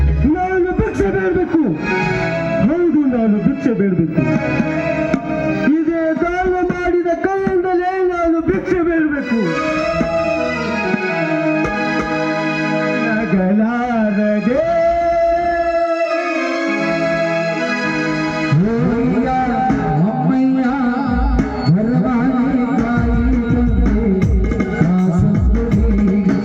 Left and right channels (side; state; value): both; identical; correlation 1.00